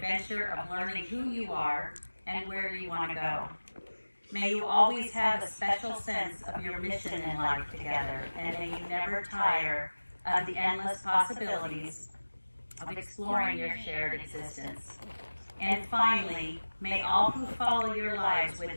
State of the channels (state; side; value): inverted; both; correlation -1.00